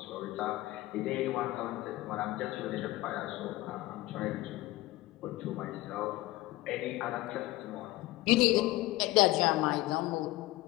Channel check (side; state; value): right; quieter; 18.0 dB